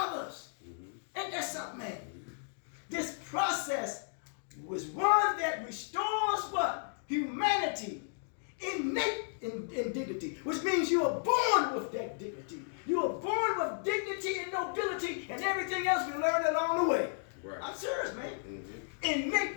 Ain't that something, man? This process was one that restores what? Humanity. Innate in dignity, which means you are born with that dignity. You are born with dignity and nobility and everything else we learned along the way. Right. I'm serious, man.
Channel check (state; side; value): silent; right; digital silence